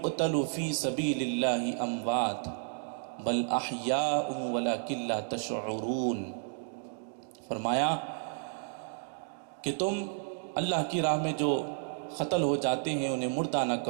فِي سَبِيلِ اللَّهِ أَمْوَاتٌ بَلْ أَحْيَاءٌ وَلَكِن لَّا تَشْعُرُونَ، فرمایا کہ تم اللہ کی راہ میں جو قتل ہو جاتے ہیں انہیں مردہ نہ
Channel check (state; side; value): silent; left; digital silence